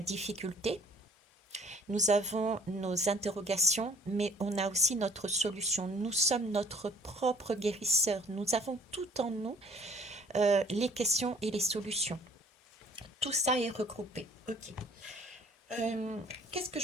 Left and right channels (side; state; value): both; normal; correlation 0.56